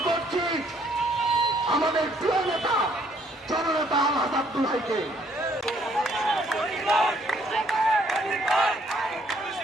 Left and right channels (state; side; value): normal; both; correlation 0.66